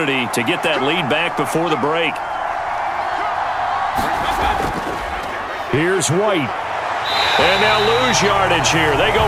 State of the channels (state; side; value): identical; both; correlation 1.00